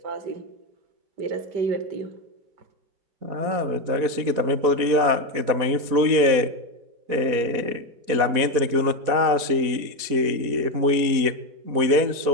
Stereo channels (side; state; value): left; late; 4.2 ms